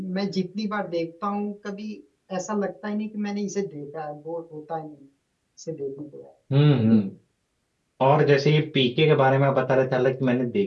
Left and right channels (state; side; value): identical; both; correlation 1.00